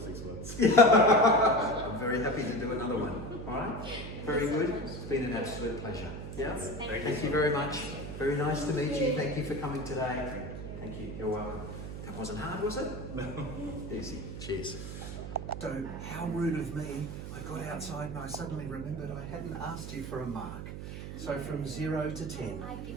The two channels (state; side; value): noise; right; hum, 8 dB below the sound